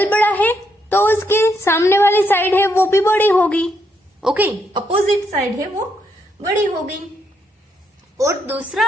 बड़ा है तो उसके सामने वाली साइड है वो भी बड़ी होगी। ओके, अपोजिट साइड है वो बड़ी होगी। और दूसरा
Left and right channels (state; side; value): normal; both; correlation 0.77